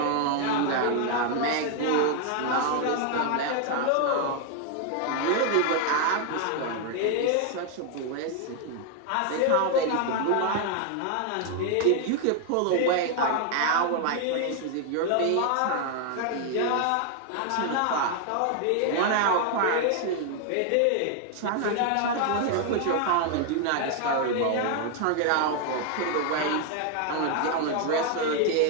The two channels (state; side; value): different; both; correlation 0.00